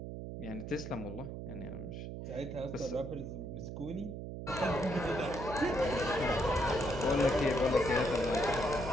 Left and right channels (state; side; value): noise; right; hum, 7 dB below the sound